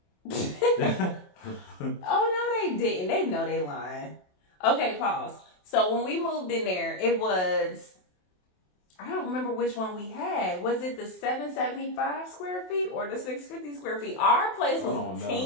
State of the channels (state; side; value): late; right; 27 ms